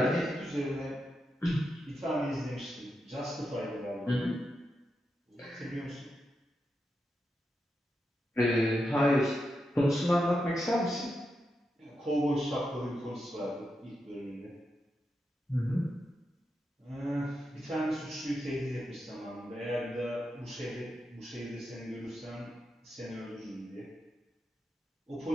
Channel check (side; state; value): both; normal; correlation 0.86